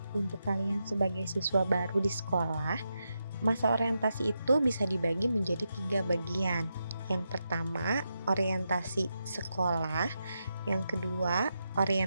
Untuk kalian sebagai siswa baru di sekolah, masa orientasi itu bisa dibagi menjadi 3 bagian. Yang pertama, orientasi sekolah. Yang kedua,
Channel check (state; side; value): inverted; both; correlation -0.86